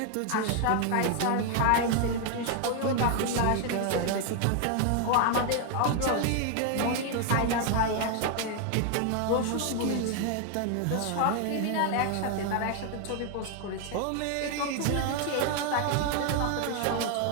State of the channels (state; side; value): different; both; correlation 0.00